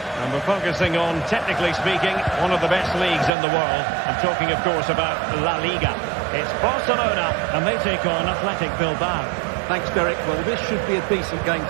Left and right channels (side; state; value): left; drops out; at 3.3 s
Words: we're focusing on, technically speaking, one of the best leagues in the world. I'm talking, of course, about La Liga. It's Barcelona, and they take on Athletic Bilbao. Thanks, Derek. Well, this should be a decent game